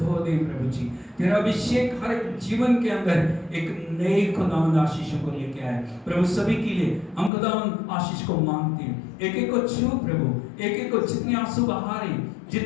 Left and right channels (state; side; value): drops out; right; at 7.3 s